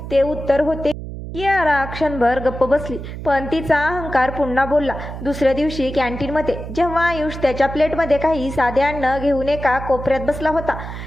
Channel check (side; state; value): right; noise; hum, 9 dB below the sound